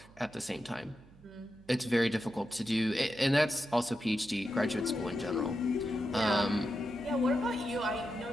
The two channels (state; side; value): noise; right; hum, 25 dB below the sound